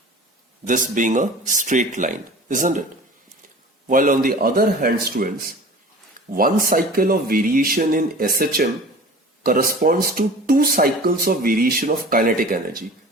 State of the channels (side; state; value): both; normal; correlation 0.41